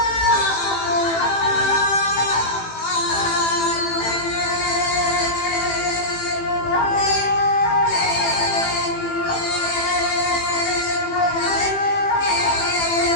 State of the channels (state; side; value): late; right; 18 ms